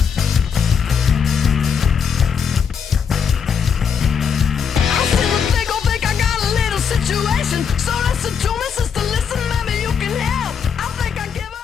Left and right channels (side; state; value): right; quieter; 6.8 dB